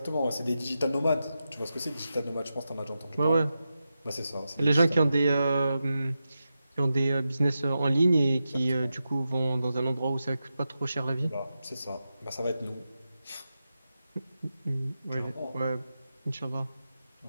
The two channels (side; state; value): both; inverted; correlation -0.90